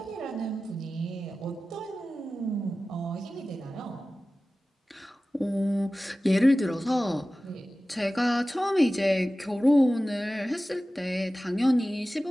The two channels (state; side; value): normal; both; correlation 0.96